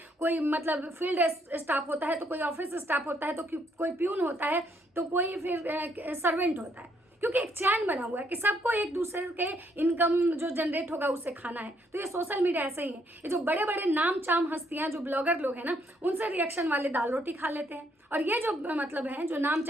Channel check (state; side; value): normal; both; correlation 0.71